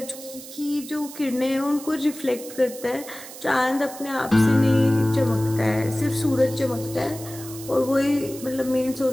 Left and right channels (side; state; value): right; noise; hiss, 14 dB below the sound